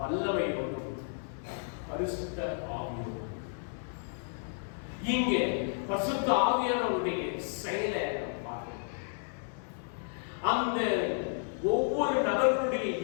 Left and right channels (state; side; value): silent; right; digital silence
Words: பரிசுத்த ஆவியோடும். இங்கே பரிசுத்த ஆவியானவருடைய செயலை பார்க்கிறோம். அந்த ஒவ்வொரு நபர்களுடைய